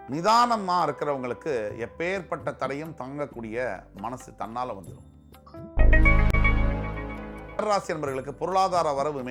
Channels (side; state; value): both; identical; correlation 1.00